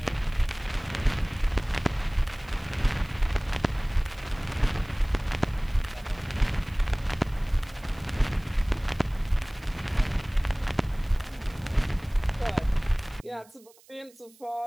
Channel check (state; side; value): noise; right; hiss, 27 dB below the sound